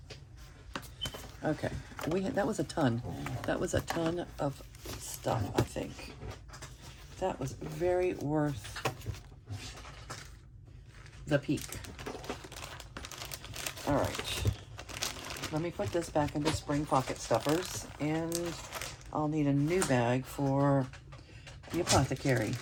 Okay, that was a ton. That was a ton of stuff, I think. That was very worth the peak. All right, let me put this back into spring pocket stuffers, and I'll need a new bag for the apothecary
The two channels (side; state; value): both; identical; correlation 1.00